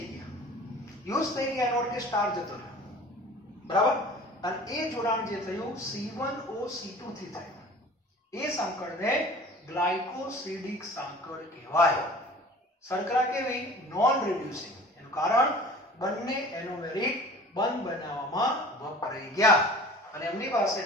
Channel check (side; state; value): both; normal; correlation 0.43